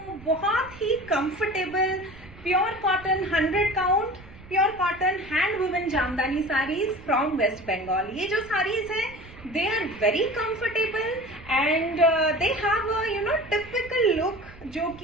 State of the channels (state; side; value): noise; right; rumble, 19 dB below the sound